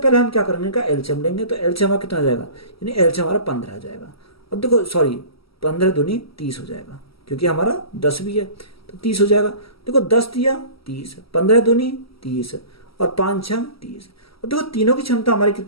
हम क्या करेंगे का एलसीएम लेंगे। तो एलसीएम हमारा कितना जाएगा, यानी एलसीएम हमारा 15 आ जाएगा। और देखो सॉरी 15 दूनी 30 हो जाएगा, क्योंकि हमारा 10 भी है तो 30 हो जाएगा। देखो 10 दिया 30, 15 दूनी 30 और 5 6 30। और देखो तीनों की क्षमता हमारी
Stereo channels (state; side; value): late; right; 0.75 ms